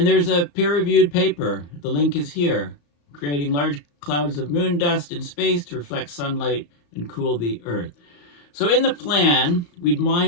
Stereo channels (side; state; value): right; late; 35 ms